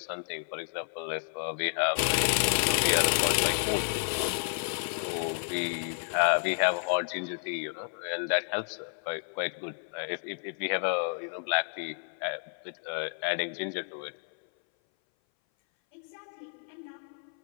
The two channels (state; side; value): silent; right; 57 dB below the other